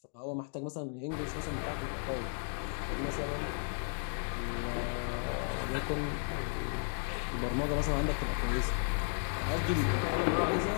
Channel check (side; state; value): right; silent; 55 dB below the other